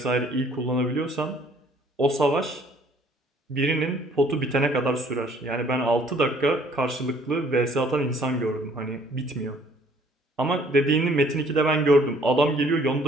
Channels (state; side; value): normal; both; correlation 0.59